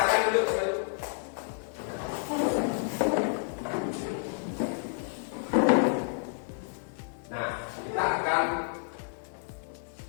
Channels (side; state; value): right; silent; 58 dB below the other